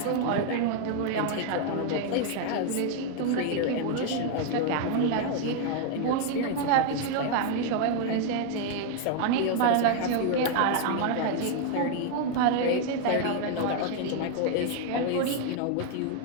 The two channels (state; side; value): different; both; correlation 0.00